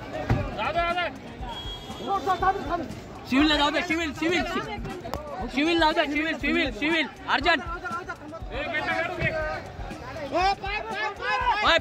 जाऊ द्या, सिव्हिल सिव्हिल सिव्हिल जाऊ द्या, सिव्हिल सिव्हिल सिव्हिल अर्जंट.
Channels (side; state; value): both; identical; correlation 1.00